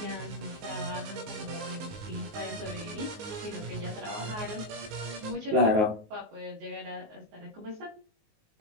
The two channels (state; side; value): late; left; 19 ms